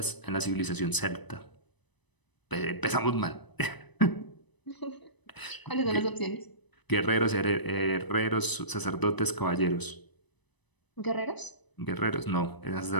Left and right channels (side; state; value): right; late; 1.0 ms